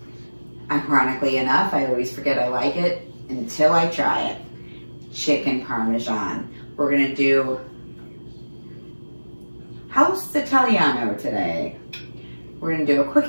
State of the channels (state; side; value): inverted; both; correlation -1.00